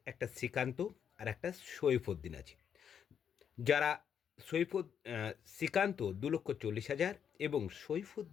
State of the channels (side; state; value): right; quieter; 8.0 dB